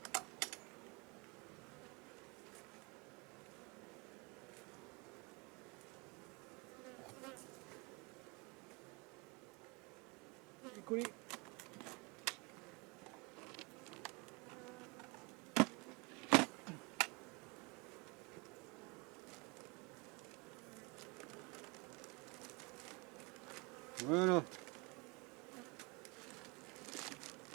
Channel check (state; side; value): quieter; left; 28.6 dB